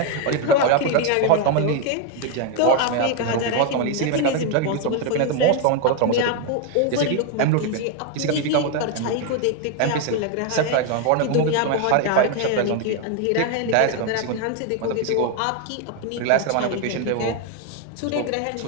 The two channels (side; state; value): both; different; correlation 0.01